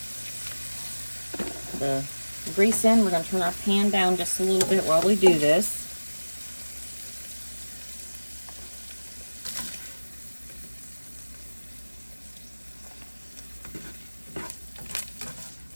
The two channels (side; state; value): both; inverted; correlation -1.00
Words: the grease in. We're gonna turn our pan down just a little bit while we do this.